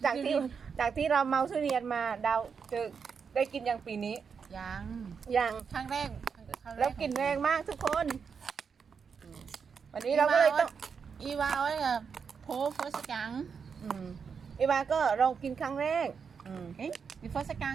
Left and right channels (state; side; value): quieter; left; 6.2 dB